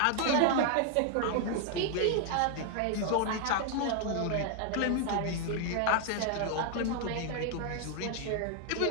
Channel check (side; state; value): both; different; correlation 0.00